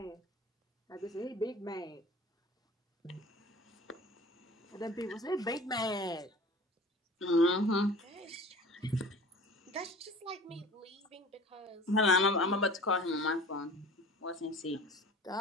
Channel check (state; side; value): normal; both; correlation 0.42